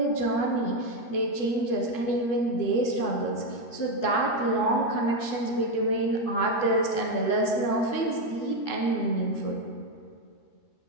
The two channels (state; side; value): late; right; 13 ms